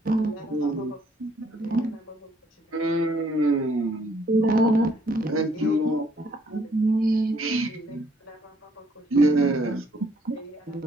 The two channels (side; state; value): both; normal; correlation 0.66